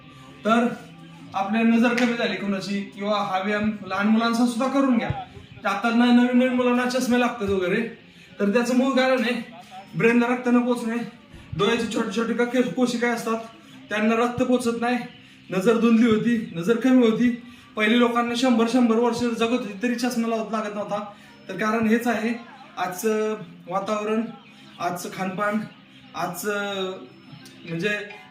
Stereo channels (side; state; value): both; identical; correlation 1.00